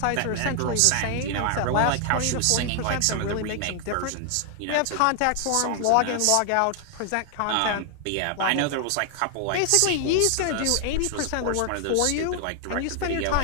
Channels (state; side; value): different; both; correlation 0.00